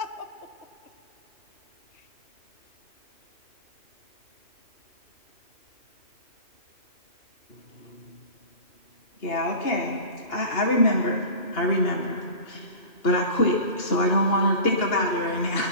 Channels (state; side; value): late; right; 2.8 ms